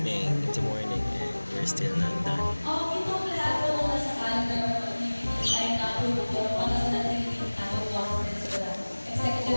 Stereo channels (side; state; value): both; inverted; correlation -1.00